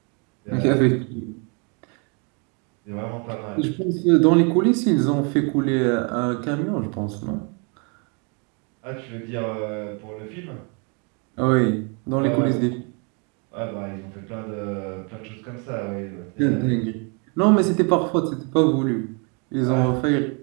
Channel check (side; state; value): left; quieter; 34.8 dB